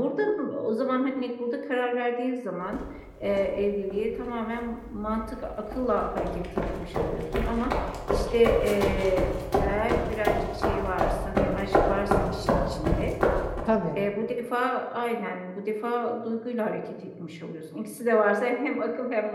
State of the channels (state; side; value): identical; both; correlation 1.00